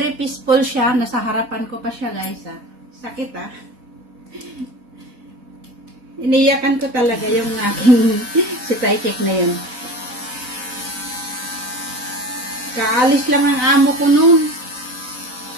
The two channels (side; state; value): left; late; 4.1 ms